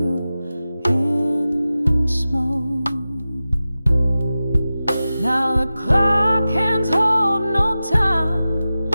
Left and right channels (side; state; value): both; inverted; correlation -0.94